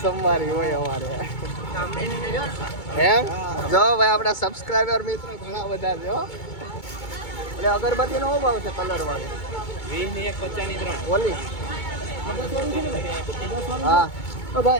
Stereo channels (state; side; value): late; right; 2.2 ms